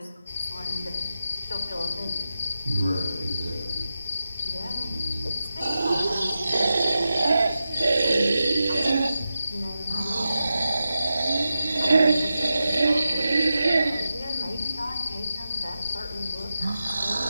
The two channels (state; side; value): inverted; both; correlation -0.91